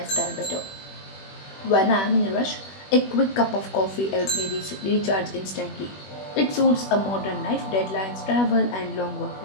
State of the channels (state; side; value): late; right; 21 ms